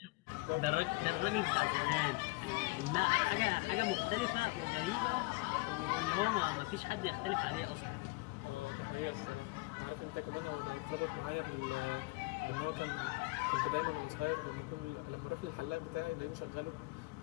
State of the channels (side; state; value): right; quieter; 24.3 dB